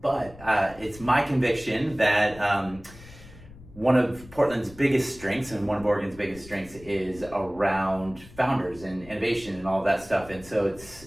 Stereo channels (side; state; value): left; noise; rumble, 20 dB below the sound